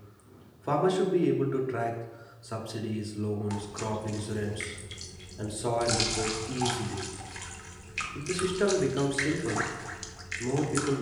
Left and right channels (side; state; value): both; identical; correlation 1.00